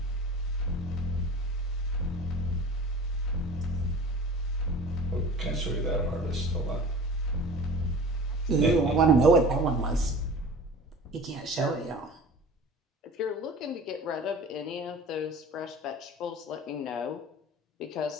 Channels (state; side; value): normal; both; correlation 0.40